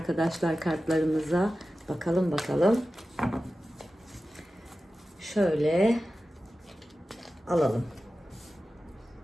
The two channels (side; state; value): both; normal; correlation 0.94